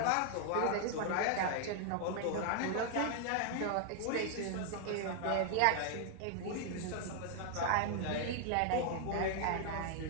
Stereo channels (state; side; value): different; both; correlation 0.00